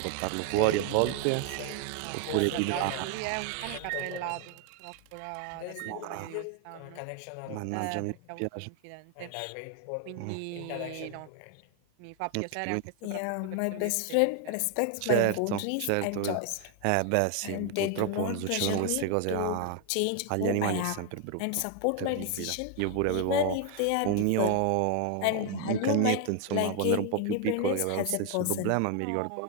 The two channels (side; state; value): both; different; correlation 0.01